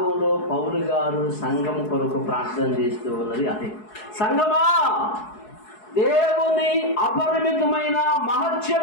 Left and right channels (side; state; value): right; late; 4.7 ms